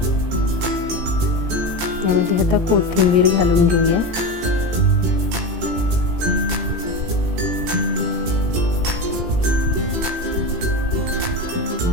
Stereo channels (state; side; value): late; left; 18 ms